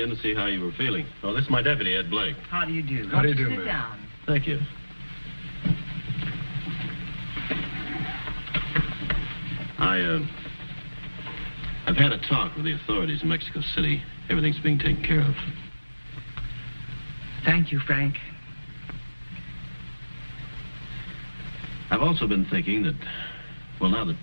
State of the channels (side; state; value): both; inverted; correlation -1.00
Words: to see how you were feeling. Oh, this is my deputy, Ed Blake. How do you do? How do you do, Sit ma'am? down. Thank you. I've had a talk with the authorities in Mexico City. Everything's being taken care of. Thank you, Frank. I've also been thinking that, well, now that